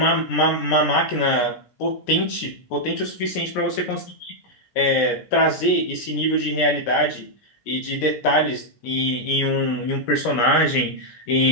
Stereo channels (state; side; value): late; right; 17 ms